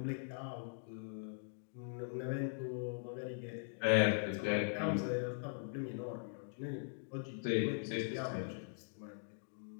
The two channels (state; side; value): silent; right; digital silence